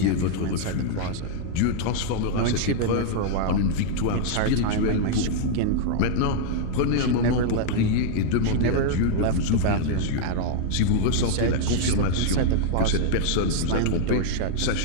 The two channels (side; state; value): both; different; correlation -0.01